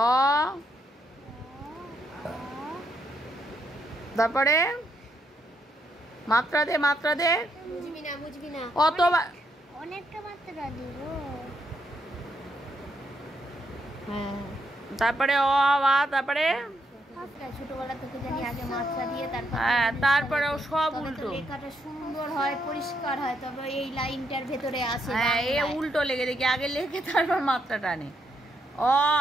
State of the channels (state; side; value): normal; both; correlation 0.77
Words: তারপরে মাত্রা দে, মাত্রা দে। বুঝবি না অতবার অনেকটা মাত্রা দিব। তারপরে অ আ, তারপরে ছোটবেলা থেকে জানি আগে মাত্রা দিয়ে তারপরে ও সব উল্টো। লেখাটা সুন্দর হয়, পরিষ্কার হয়, তবে এই লাইনটার ভেতরে আসে। হ্যাঁ, এ উল্টো লেগে দেখি, আগে লেখে তারপর মাত্রা টানে। অ